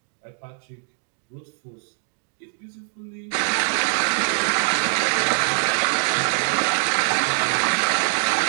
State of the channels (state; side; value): silent; left; digital silence